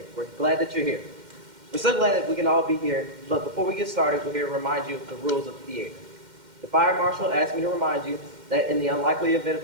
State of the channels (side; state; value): left; late; 2.1 ms